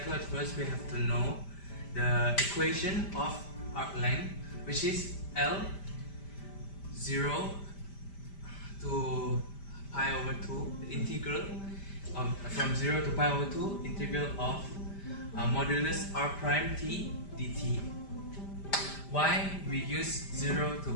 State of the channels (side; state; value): right; late; 5.1 ms